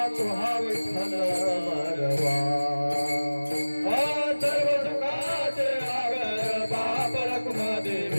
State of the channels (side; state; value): both; inverted; correlation -1.00